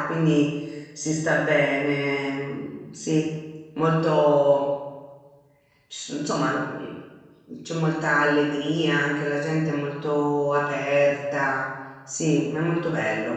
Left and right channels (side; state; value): both; identical; correlation 1.00